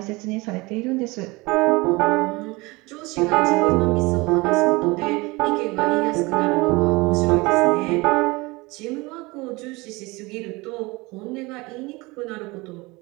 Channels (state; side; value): quieter; left; 23.8 dB